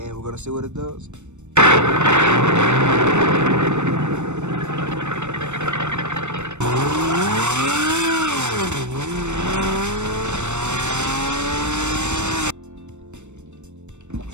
we're gonna see what it does.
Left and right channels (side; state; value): left; late; 0.83 ms